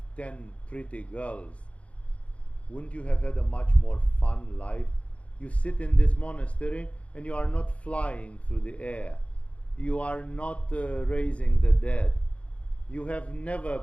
10 pretty girls, wouldn't you have had a much more fun life? You sit in this monastery and you are not flying through the air. You are not raising the dead. You have never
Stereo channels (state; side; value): late; right; 0.063 ms